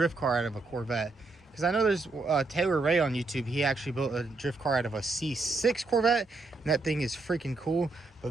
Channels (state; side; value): quieter; left; 3.4 dB